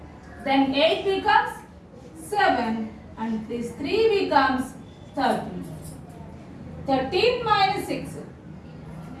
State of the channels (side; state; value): both; identical; correlation 1.00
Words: Then 8 becomes 7 and this 3 becomes 13. 13 minus 6.